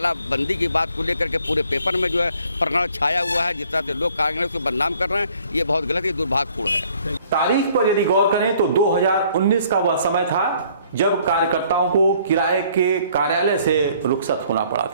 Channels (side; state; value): both; inverted; correlation -0.60